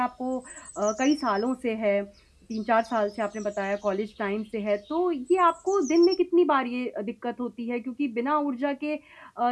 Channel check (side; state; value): both; identical; correlation 1.00